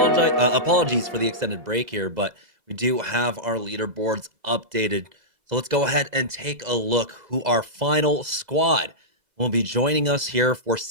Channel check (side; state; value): left; late; 2.0 ms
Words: for the extended break here, but we do have our leaderboards updated. So let's go ahead and take a look who our final squad will be joining us here for